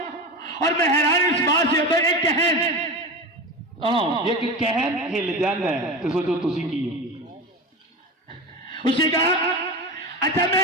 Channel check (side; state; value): both; normal; correlation 0.25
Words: और मैं हैरान इस बात से होता है, एक कहन ये कहन हिल जाता है तो सोचो तुसी की। उसे कहा, अच्छा